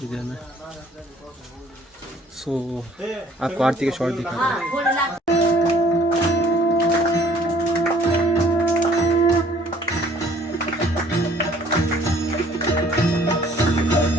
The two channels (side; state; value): both; normal; correlation 0.56